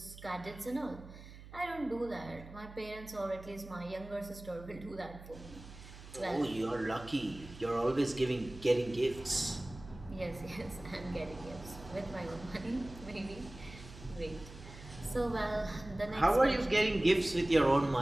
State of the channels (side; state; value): right; noise; hum, 16 dB below the sound